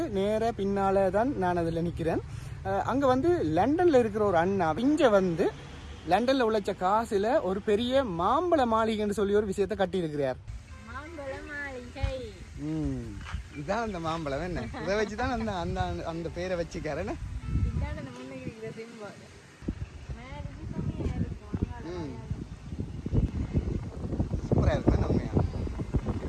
நேர பின்னால தான் நான் அதில் நிற்கிறேன். அங்கே வந்து லண்டனில் இருக்கிற ஒரு அண்ணா இங்கே வந்து லண்டனில் உழைச்ச காசில் ஒரு பெரிய மாம்பழ மாளிகைன்னு சொல்லி ஒரு விஷயத்தை கட்டியிருக்கிறார். இதுதான் அந்த மாம்பழம் என்ன, இதை வச்சு தான் அந்த அந்த அந்த பேரை வச்சுக்காரன்னு. சூப்பராக இருக்கு உண்மையா.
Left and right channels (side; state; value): both; identical; correlation 1.00